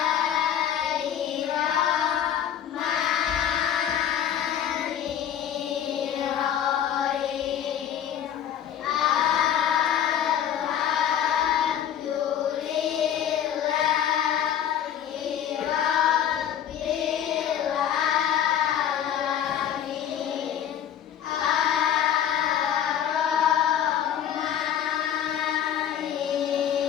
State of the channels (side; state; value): right; quieter; 9.8 dB